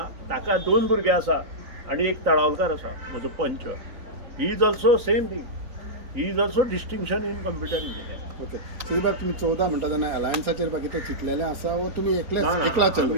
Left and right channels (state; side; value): late; left; 3.9 ms